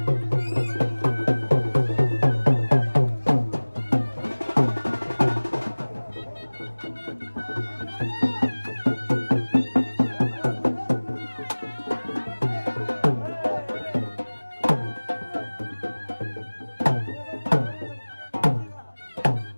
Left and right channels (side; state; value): both; inverted; correlation -1.00